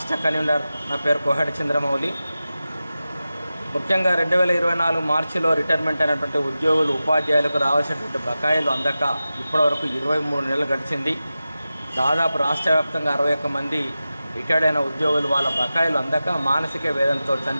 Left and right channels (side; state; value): both; inverted; correlation -0.94